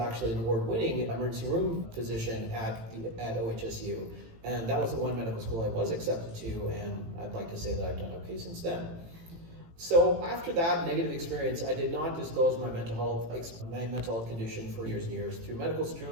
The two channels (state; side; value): late; left; 18 ms